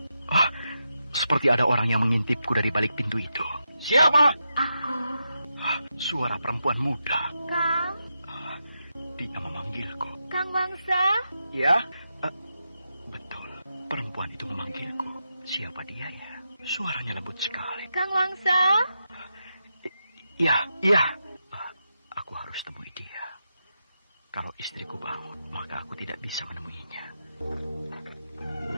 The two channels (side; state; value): both; inverted; correlation -0.86